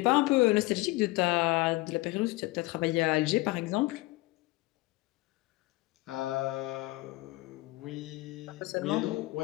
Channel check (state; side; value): quieter; right; 21.2 dB